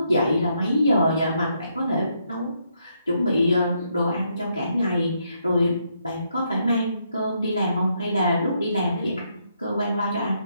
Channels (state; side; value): inverted; both; correlation -0.76